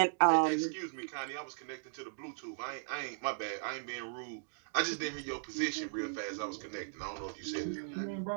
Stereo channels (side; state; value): left; silent; digital silence